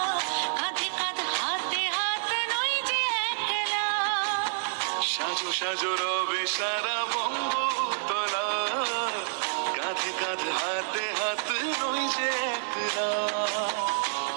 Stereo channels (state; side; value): silent; left; 58 dB below the other